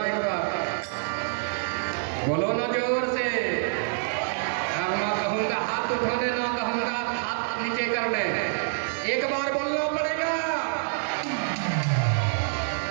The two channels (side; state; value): left; silent; digital silence